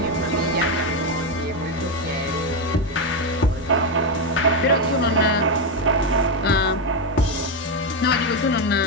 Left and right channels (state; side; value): normal; both; correlation 0.07